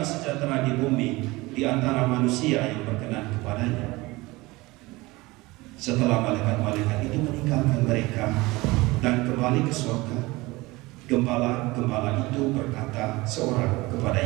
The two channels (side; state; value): left; quieter; 21.6 dB